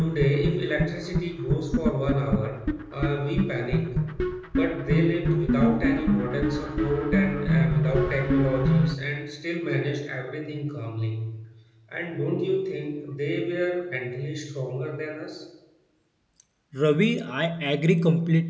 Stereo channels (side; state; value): both; identical; correlation 1.00